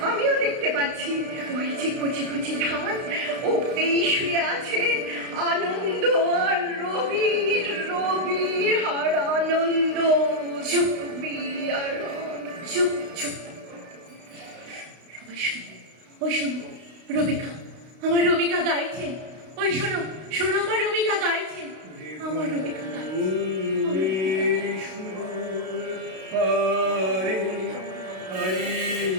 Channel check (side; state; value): left; late; 32 ms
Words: আমিও দেখতে পাচ্ছি। ওই যে কচি কচি ধান, ওতেই শুয়ে আছে আনন্দ আর রবি, রবি আর আনন্দ, চুপ, রবি আর আনন্দ। চুপ চুপ, সবাই শুনো, ওই শোনো, রবিকা, আমার রবিকা গাইছেন। ওই শোনো, শোনো, আমার রবিকা গাইছেন, আমার রবিকা গাইছেন, আমার রবিকা গাইছেন। পারে